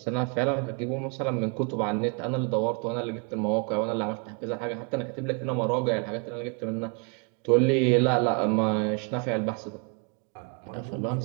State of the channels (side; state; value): left; quieter; 35.9 dB